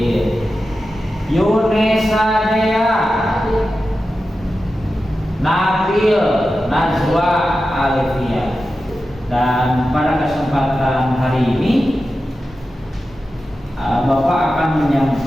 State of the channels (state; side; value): normal; both; correlation 0.92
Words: Yunesa Dea, Nabil Najwa Alifia. Dan pada kesempatan hari ini Bapak akan